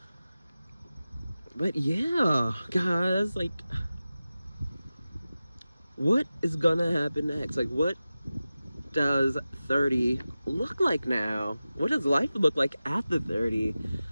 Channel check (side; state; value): both; inverted; correlation -0.95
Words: But yeah, guys, like, what is gonna happen next? Like, what does 30 look like now? What does life look like after 30?